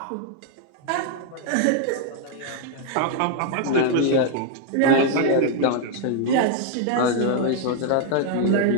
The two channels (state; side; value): different; both; correlation 0.00